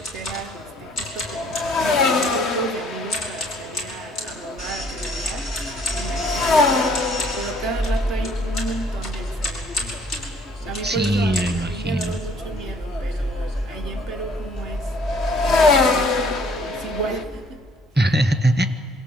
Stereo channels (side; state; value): both; normal; correlation 0.61